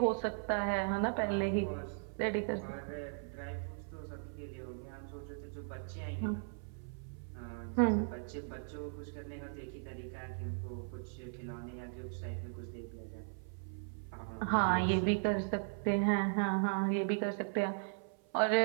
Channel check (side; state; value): left; silent; 53 dB below the other